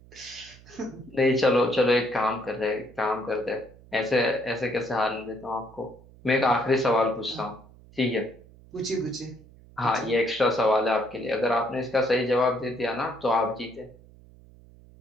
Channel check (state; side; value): noise; right; hum, 23 dB below the sound